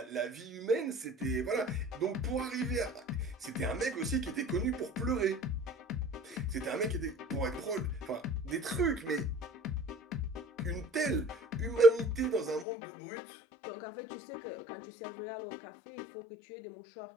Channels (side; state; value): right; drops out; at 12.7 s